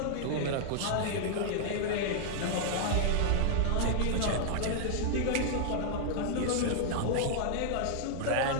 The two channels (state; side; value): different; both; correlation -0.01